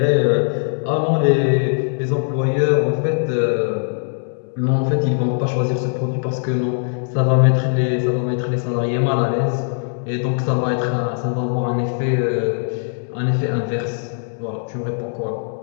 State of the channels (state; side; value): silent; right; digital silence